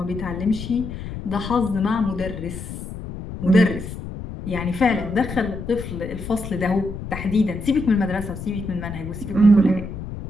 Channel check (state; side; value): noise; left; rumble, 9 dB below the sound